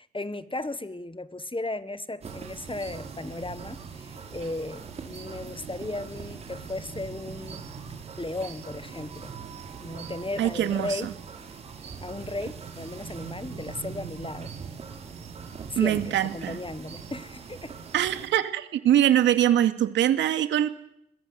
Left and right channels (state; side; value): quieter; left; 7.2 dB